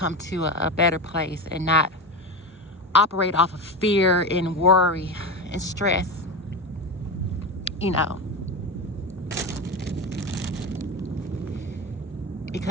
to a better place and not operate off of fear and worry and stress, you know.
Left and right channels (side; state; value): both; normal; correlation 0.21